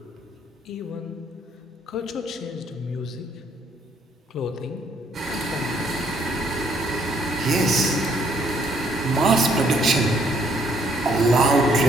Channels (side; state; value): both; normal; correlation 0.67